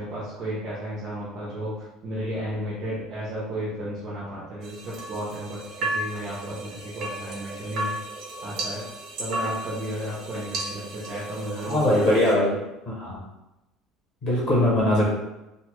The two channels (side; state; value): both; normal; correlation 0.53